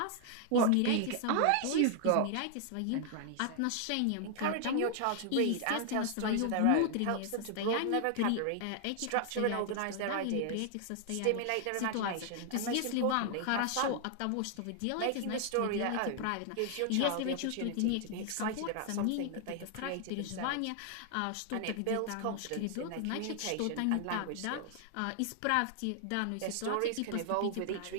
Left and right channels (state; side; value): different; both; correlation 0.00